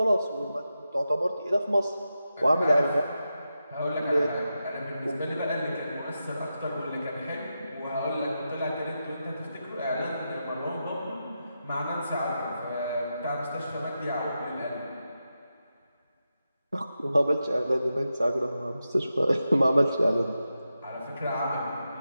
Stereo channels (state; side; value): inverted; both; correlation -0.89